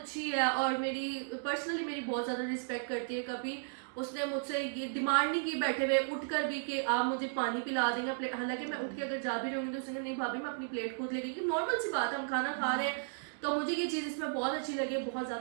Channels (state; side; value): silent; left; digital silence